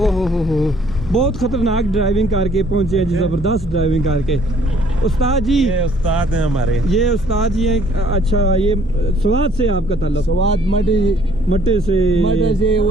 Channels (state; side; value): noise; left; hum, 13 dB below the sound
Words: हो बहुत खतरनाक ड्राइविंग करके पहुंचे हैं जी, ज़बरदस्त ड्राइविंग करके। उस्ताद जी, ये उस्ताद हैं हमारे। ये उस्ताद जी हैं। अच्छा, ये स्वाद से आपका ताल्लुक? स्वाद मटे से